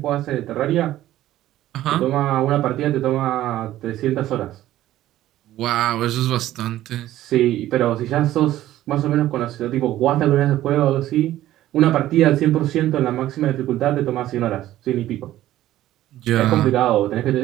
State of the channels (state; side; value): quieter; left; 14.1 dB